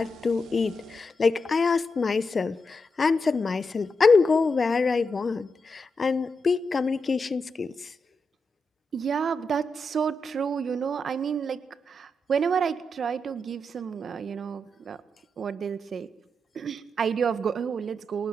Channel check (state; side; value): normal; both; correlation 0.85